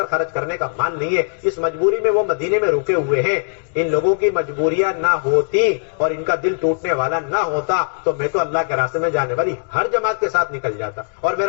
خرچ کرنے کا مال نہیں ہے, اس مجبوری میں وہ مدینے میں رکے ہوئے ہیں. ان لوگوں کی مجبوریاں نہ ہوتی اور ان کا دل ٹوٹنے والا نہ ہوتا تو میں تو اللہ کے راستے میں جانے والی ہر جماعت کے ساتھ نکل جاتا, اور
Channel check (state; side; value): silent; right; digital silence